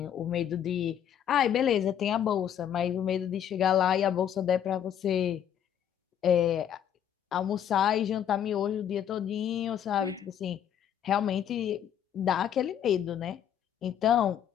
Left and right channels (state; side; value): quieter; right; 9.5 dB